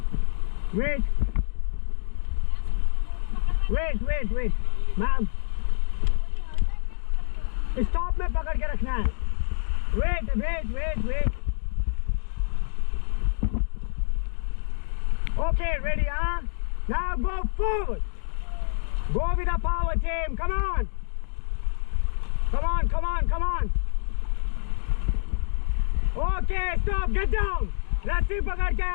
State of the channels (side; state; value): right; silent; digital silence